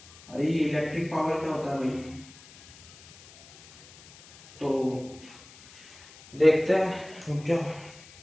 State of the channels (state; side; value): noise; left; hiss, 22 dB below the sound